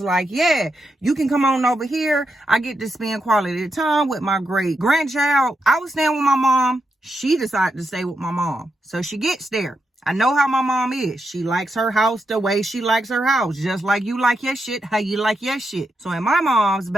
like, yeah, you can come on over here. I get to spend quality time with my great grandchild. I was staying with my mom. She decided to stay with my mom. So she gets there. I know how my mom is. She likes her house the way she likes her house. Just like you like your shit, how you like your shit. So in my mom's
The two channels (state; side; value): normal; both; correlation 0.84